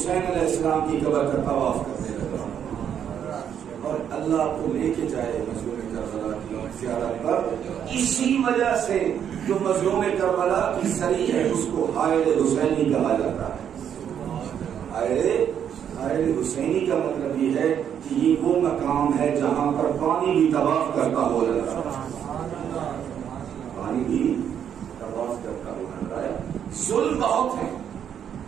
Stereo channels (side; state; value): left; quieter; 8.8 dB